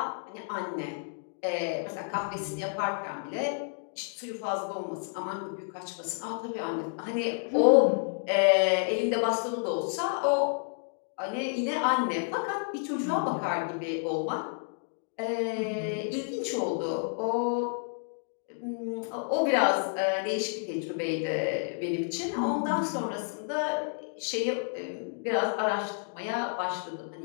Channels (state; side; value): silent; right; digital silence